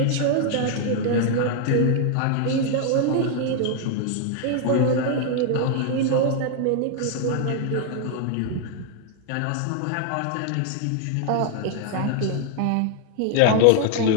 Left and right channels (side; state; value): both; different; correlation 0.00